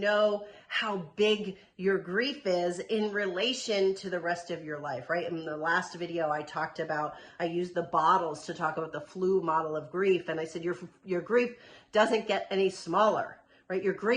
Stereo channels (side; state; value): both; identical; correlation 1.00